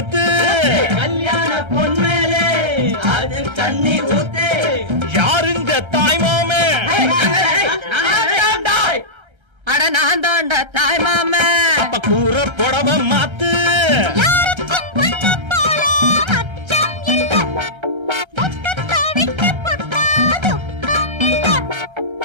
கல்யாண பொன்மேலே அது தண்ணி ஊத்து யாருங்க தாய்மாமே அட நான் தாண்டா தாய் மாமே. அப்ப கூற புடவ மாத்து யாருக்கும் பொண்ணு போல அச்சம் இல்ல. துக்கத்தை விட்டு புட்டா துக்கம் இல்ல.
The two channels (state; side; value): late; left; 1.3 ms